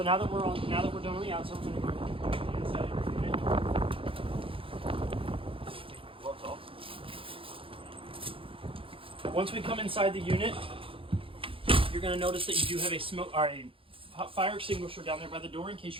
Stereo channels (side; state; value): left; late; 0.26 ms